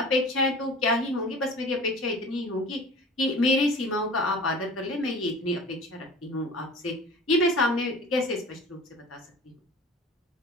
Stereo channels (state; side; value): normal; both; correlation 0.41